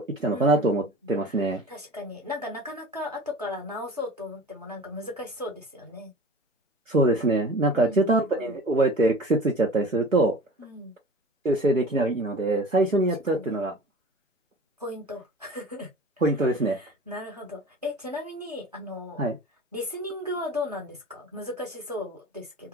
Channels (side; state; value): both; normal; correlation 0.40